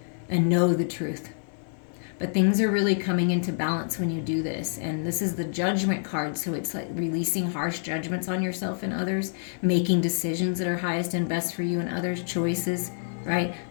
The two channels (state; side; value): silent; right; digital silence